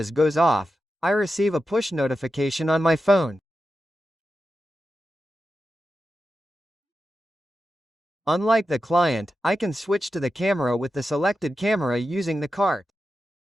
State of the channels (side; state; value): both; normal; correlation 0.90